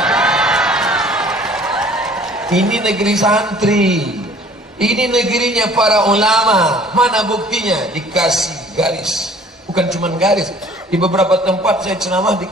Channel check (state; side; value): normal; both; correlation 0.53